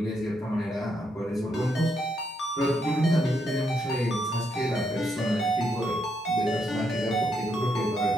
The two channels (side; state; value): both; normal; correlation 0.78